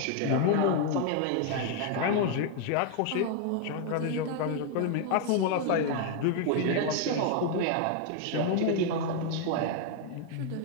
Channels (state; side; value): different; both; correlation 0.00